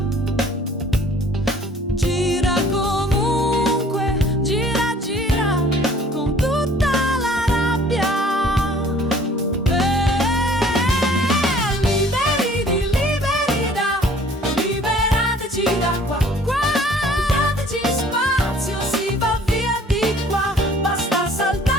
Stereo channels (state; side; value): normal; both; correlation 0.54